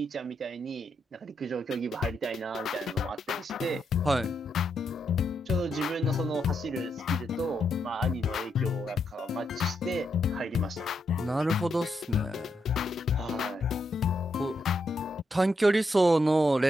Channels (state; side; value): normal; both; correlation 0.81